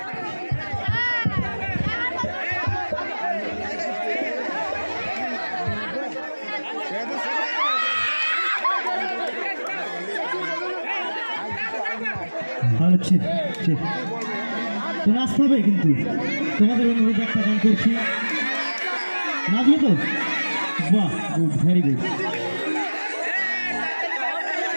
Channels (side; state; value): both; inverted; correlation -1.00